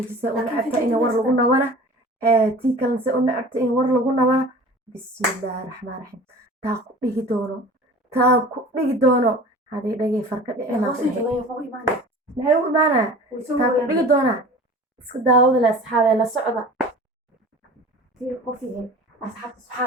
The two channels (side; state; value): both; normal; correlation 0.41